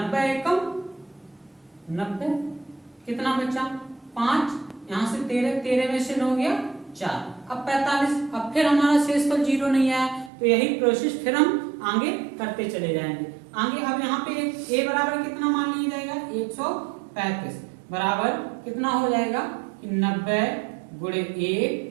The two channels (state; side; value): drops out; left; at 10.3 s